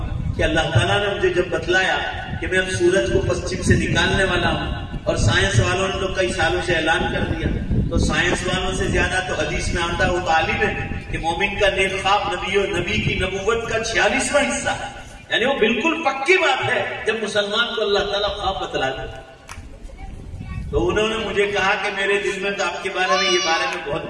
कि अल्लाह ताला ने मुझे जब बतलाया कि मैं अब सूरज को पश्चिम से निकालने वाला हूं, और साइंस वालों ने तो कई सालों से ऐलान कर दिया, तो साइंस वालों से ज्यादा तो हदीस में आता वो तालीम है कि मोमिन का नेक ख्वाब नबी की नबूवत का 46वां हिस्सा, यानी वो बिल्कुल पक्की बात है जब मुसलमान को अल्लाह ताला ख्वाब बतला दे। तो उन्होंने मुझे कहा कि मेरे दिल में तो आपके बारे में बहुत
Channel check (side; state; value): both; identical; correlation 1.00